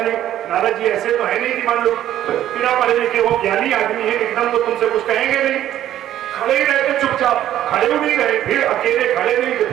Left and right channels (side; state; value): left; quieter; 12.1 dB